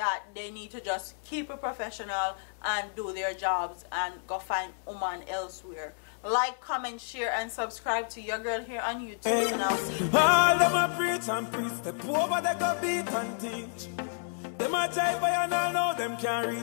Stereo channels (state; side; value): silent; right; 58 dB below the other